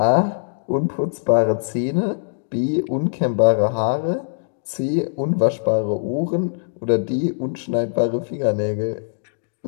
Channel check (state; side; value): silent; right; digital silence